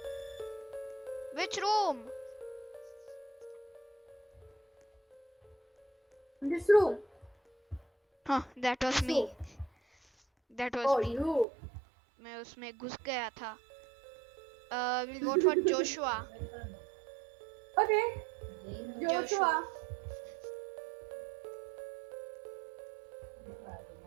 Which room? In this room. Huh, that was This me. room. That was Oh, me. you. मैं उसमें घुस गया था. We'll vote for Joshua. Okay. Joshua.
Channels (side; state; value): left; drops out; at 11.5 s